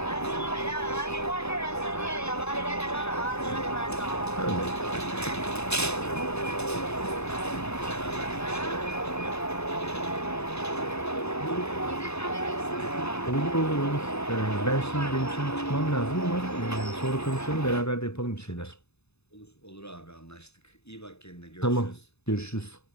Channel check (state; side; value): late; right; 0.80 ms